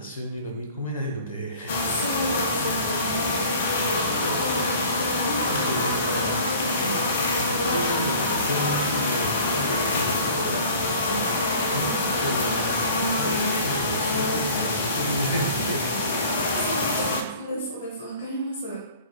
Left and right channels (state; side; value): inverted; both; correlation -0.46